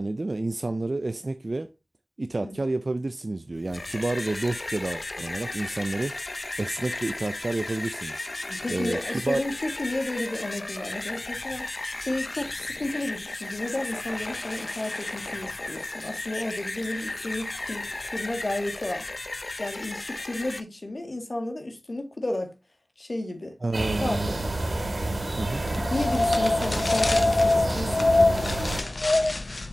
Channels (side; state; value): both; normal; correlation 0.97